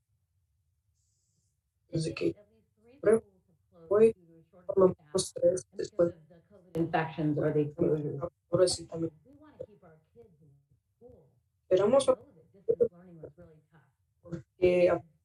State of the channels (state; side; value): identical; both; correlation 1.00